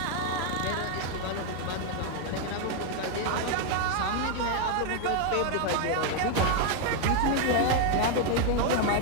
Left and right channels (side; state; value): both; different; correlation 0.00